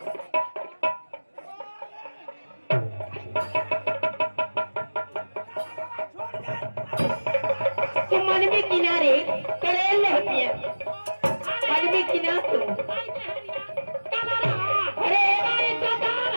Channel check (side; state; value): both; inverted; correlation -1.00